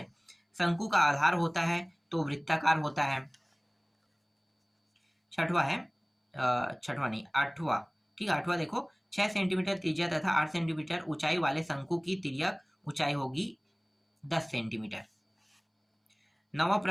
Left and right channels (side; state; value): both; identical; correlation 1.00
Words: शंकु का आधार होता है तो वृत्ताकार होता है। छठवा है, छठवा नहीं, आठवां, ठीक है, आठवां देखो, 6 सेंटीमीटर त्रिज्या तथा 8 सेंटीमीटर ऊंचाई वाले शंकु की तिर्यक ऊंचाई होगी 10 सेंटीमीटर। नवा